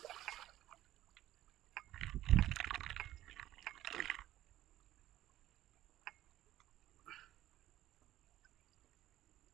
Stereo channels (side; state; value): left; quieter; 13.8 dB